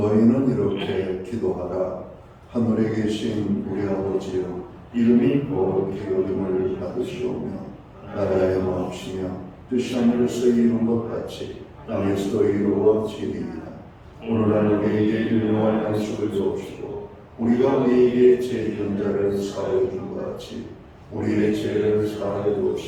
이렇게 기도하라. 하늘에 계신 우리 아버지여, 이름이 거룩히 여김을 받으시오며 나라의 마옵시며 뜻이 하늘에서 이룬 것 같이 땅에서도 이루어지리이다. 오늘날 우리에게 일용할 양식을 주옵시고 우리가 우리에게 죄지은 자를 사하여 준 것 같이 우리의 죄를 사하여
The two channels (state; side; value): identical; both; correlation 1.00